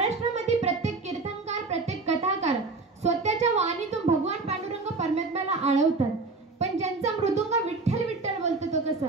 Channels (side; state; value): left; quieter; 3.8 dB